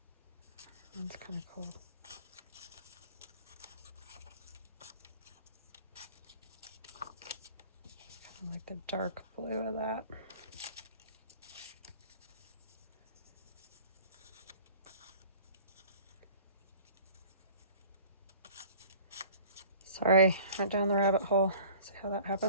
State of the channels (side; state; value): both; inverted; correlation -0.47